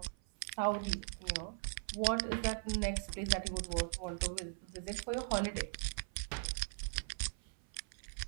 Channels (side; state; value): left; silent; 51 dB below the other